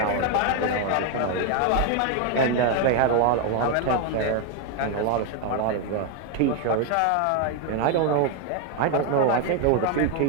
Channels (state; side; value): different; both; correlation 0.01